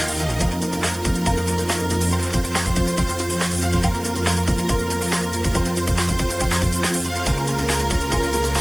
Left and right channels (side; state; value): right; noise; hiss, 16 dB below the sound